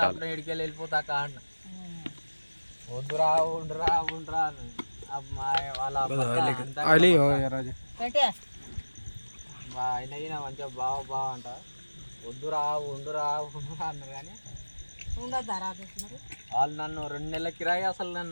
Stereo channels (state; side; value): inverted; both; correlation -1.00